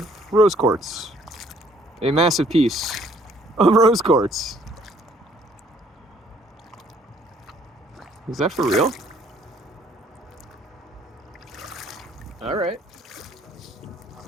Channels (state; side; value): normal; both; correlation 0.62